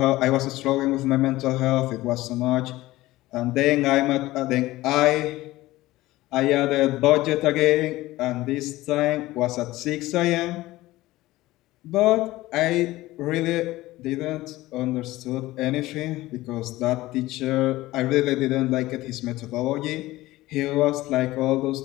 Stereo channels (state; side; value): quieter; right; 17.8 dB